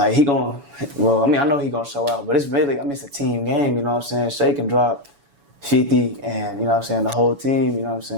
I know he gonna show out, but it's really, it's a team game, you know what I'm saying? Shea can drop 50 and, you know what I'm saying, the whole team, you know what I'm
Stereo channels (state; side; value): late; left; 7.1 ms